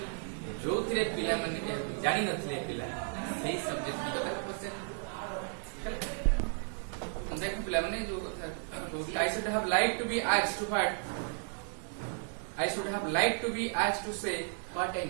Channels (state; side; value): silent; left; 55 dB below the other